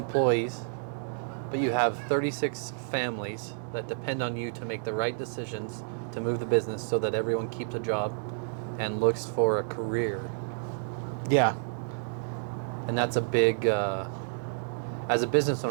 but you have 36 families that depend on you to make the right decisions to move the business so that everyone keeps a job and looks for a career. Yeah. And that's a big, as a business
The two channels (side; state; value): left; silent; digital silence